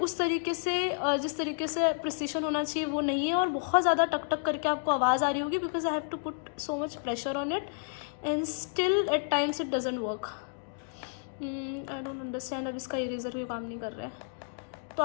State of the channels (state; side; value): silent; right; digital silence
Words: तरीके से जिस तरीके से प्रिसीशन होना चाहिए वो नहीं है, और बहुत ज़्यादा टक टक करके आपको आवाज़ आ रही होगी, because I have to put so much pressure on it and still at times it doesn't work. I don't understand. अब इसका इरेज़र भी काम नहीं कर रहा है, तो